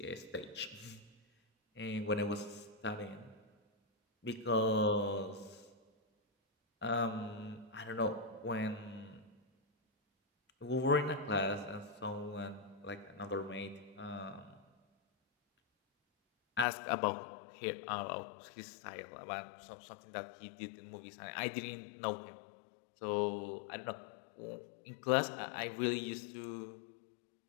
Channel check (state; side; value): drops out; right; at 16.7 s